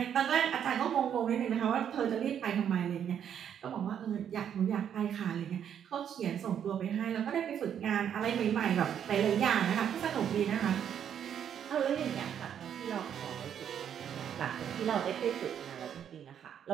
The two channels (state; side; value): quieter; left; 8.9 dB